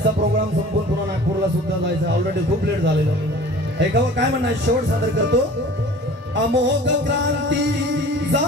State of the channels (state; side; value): normal; both; correlation 0.44